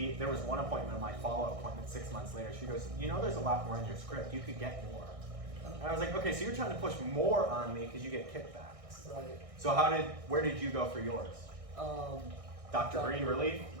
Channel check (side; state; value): left; late; 1.6 ms